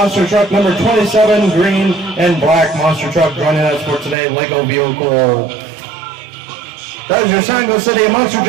truck number 27, green and black monster truck joining us for today, Lego vehicle. That is your San Luis City Monster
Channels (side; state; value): left; drops out; at 4.2 s